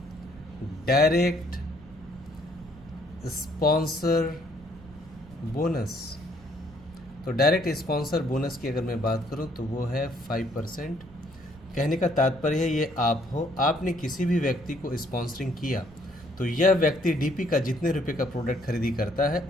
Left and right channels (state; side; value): noise; right; rumble, 22 dB below the sound